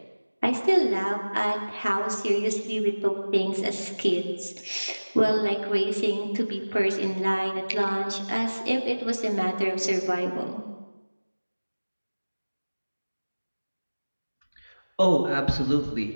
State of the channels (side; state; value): both; inverted; correlation -1.00